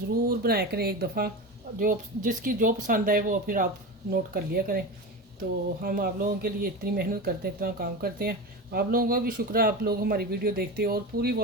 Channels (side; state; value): both; normal; correlation 0.25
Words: बनाया करें एक दफ़ा। जो जिसकी जो पसंद आए वो फिर आप नोट कर लिया करें। तो हम आप लोगों के लिए इतनी मेहनत करते हैं, इतना काम करते हैं। आप लोगों का भी शुक्र है, आप लोग हमारी वीडियो देखते हैं और पूरी